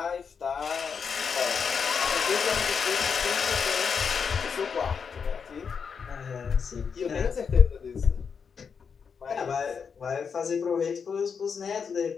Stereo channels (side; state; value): right; quieter; 6.2 dB